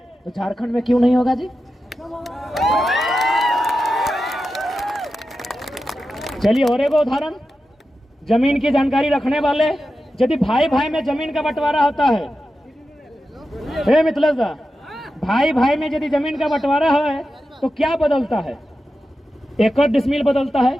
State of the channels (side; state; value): both; normal; correlation 0.91